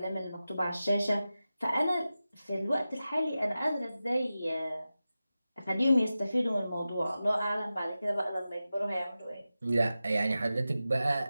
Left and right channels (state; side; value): inverted; both; correlation -0.94